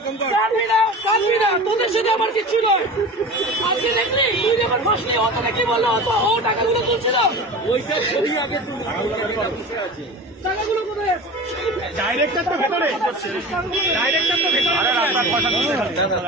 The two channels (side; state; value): both; normal; correlation 0.34